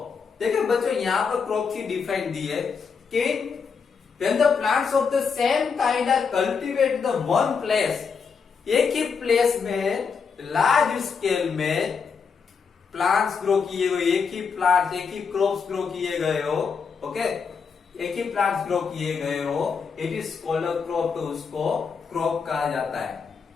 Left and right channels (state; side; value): quieter; right; 5.8 dB